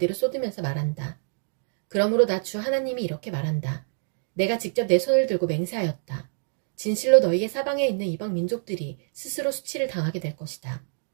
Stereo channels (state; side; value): silent; left; digital silence